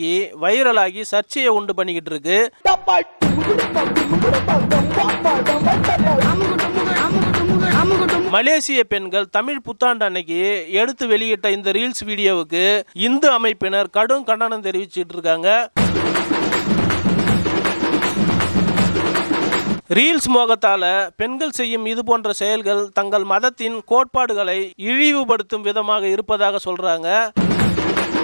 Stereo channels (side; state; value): both; inverted; correlation -1.00